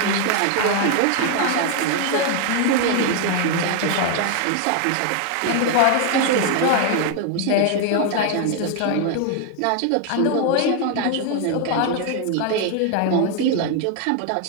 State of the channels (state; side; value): different; both; correlation 0.01